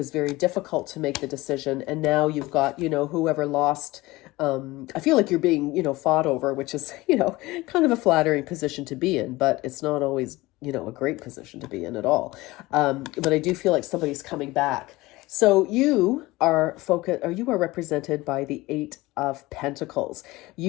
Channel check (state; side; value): quieter; right; 20.0 dB